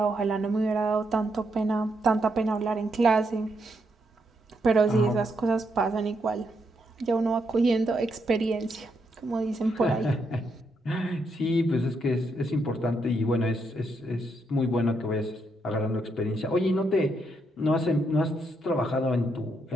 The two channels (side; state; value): both; normal; correlation 0.78